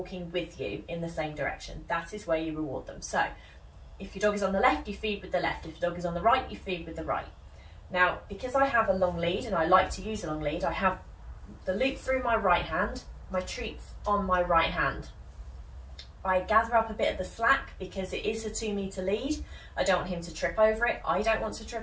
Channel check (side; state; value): both; identical; correlation 1.00